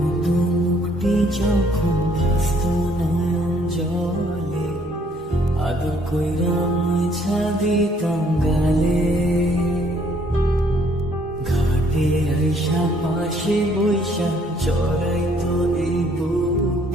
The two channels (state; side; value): normal; both; correlation 0.64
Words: মুখটি যখন ভাসত নয়ন জলে, আদর কইরা মুছা দিতাম গালে। ঘাটে আইসা পাশে বৈশা জড়াইতো এই